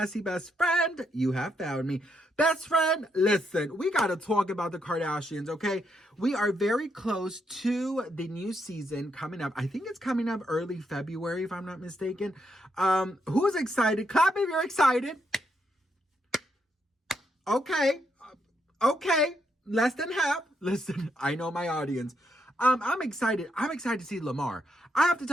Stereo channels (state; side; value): normal; both; correlation 0.78